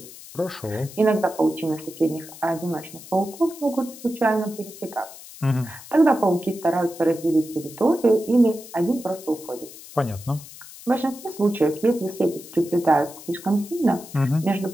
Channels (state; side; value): noise; left; hiss, 17 dB below the sound